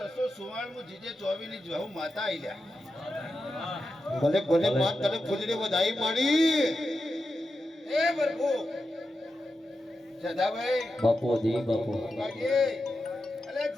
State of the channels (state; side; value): normal; both; correlation 0.90